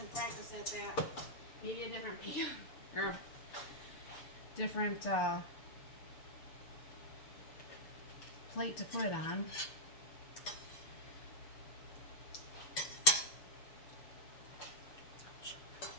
practice at that. Maybe a different pan or different plate to put it on.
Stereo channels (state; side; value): late; right; 6.8 ms